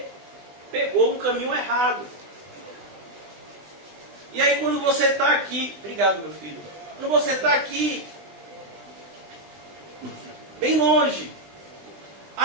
pegou um caminho errado. E aí quando você está aqui, obrigado meu filho, quando você está aqui, bem longe,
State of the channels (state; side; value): late; left; 20 ms